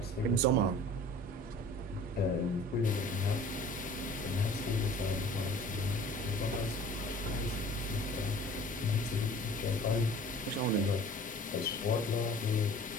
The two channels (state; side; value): normal; both; correlation 0.46